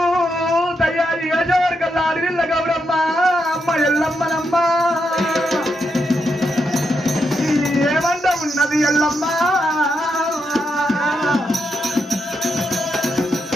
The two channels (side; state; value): both; normal; correlation 0.82